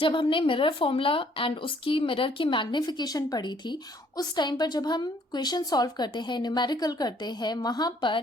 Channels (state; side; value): normal; both; correlation 0.63